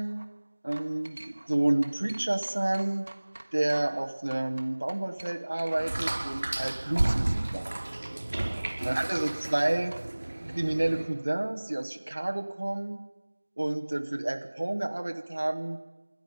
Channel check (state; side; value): inverted; both; correlation -1.00